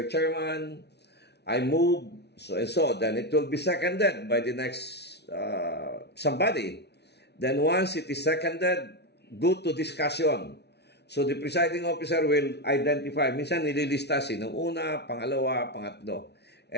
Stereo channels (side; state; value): right; late; 0.49 ms